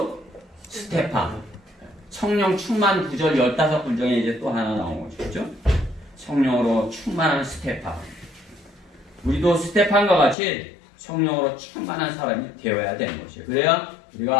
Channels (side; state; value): right; drops out; at 10.4 s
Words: 스테판. 성령 충만 구절 15군 중에 이제 또 하나 나온 거죠. 그렇죠? 성령으로 충만한 스테판. 우리도 스테판과 같이 성령으로 충만한 사람이 되어야 되는 것이에요. 그래야